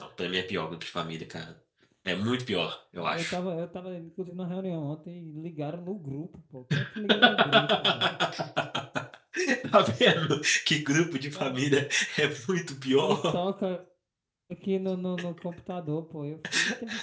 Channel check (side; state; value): both; identical; correlation 1.00